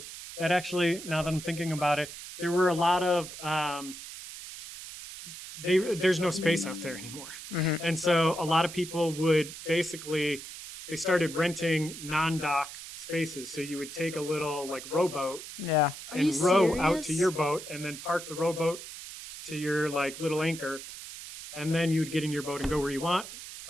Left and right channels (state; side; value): noise; right; hiss, 12 dB below the sound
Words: that actually, now that I'm thinking about it, there were a lot of, there's no space out there anymore. Mm-hmm. And so a lot of people would basically, they started renting non-dock spaces. So you would take a little like rowboat and row out to your boat and then park the rowboat to your like little anchor. And then you would get in your boat and go where you want,